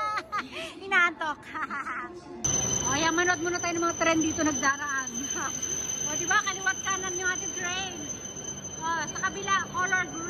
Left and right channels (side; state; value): both; identical; correlation 1.00